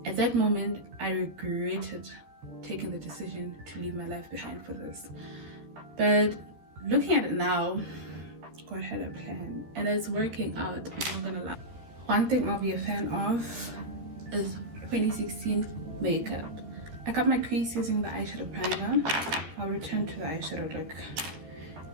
At that moment, I regretted taking the decision to leave my life behind for this. But looking at it now, God had a plan and it's working out. I'm not gonna lie. One thing I'll be a fan of is 2016 makeup. I got my crease using the eyeshadow primer. I'll return to the eyeshadow look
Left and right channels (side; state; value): left; late; 13 ms